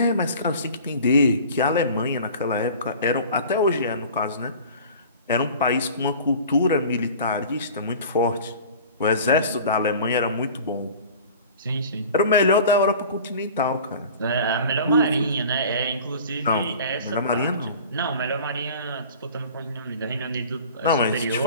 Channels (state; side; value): inverted; both; correlation -0.42